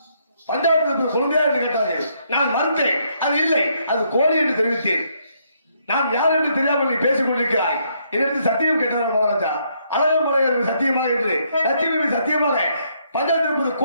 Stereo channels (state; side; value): inverted; both; correlation -0.72